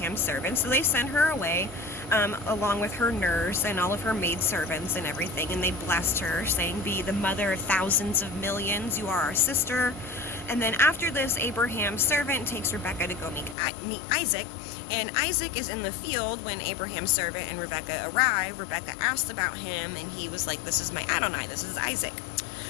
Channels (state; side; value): drops out; right; at 13.6 s